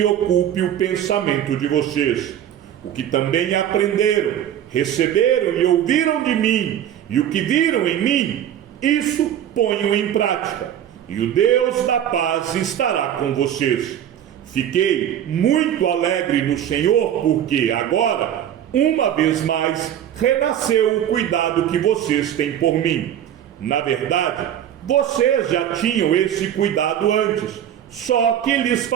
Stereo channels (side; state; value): left; quieter; 10.4 dB